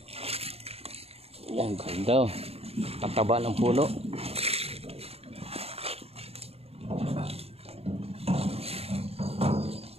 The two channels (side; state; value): left; late; 0.29 ms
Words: Yan, ganda, oh. Tataba ng puno.